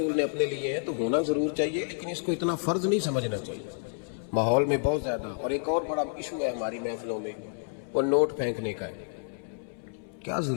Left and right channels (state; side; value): silent; right; 58 dB below the other